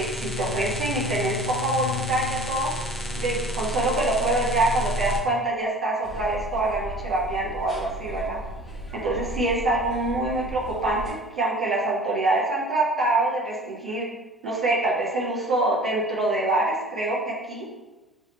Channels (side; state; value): both; normal; correlation 0.44